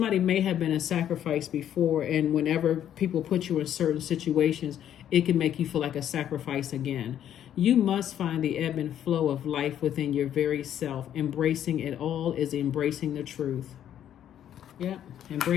may have been a sacrifice before, and whenever people put you in certain situations, it can make you feel like a sacrifice again. You must find the ebb and flow of life within your very self. Embracing it all is embracing the truth. Yeah,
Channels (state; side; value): quieter; right; 10.5 dB